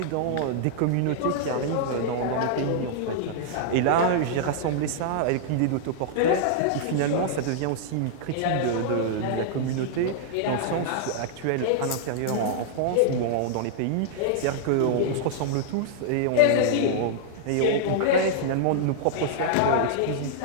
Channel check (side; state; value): both; different; correlation -0.01